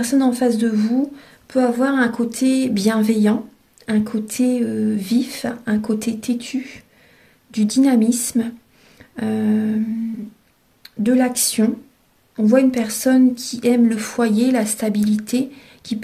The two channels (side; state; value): both; identical; correlation 1.00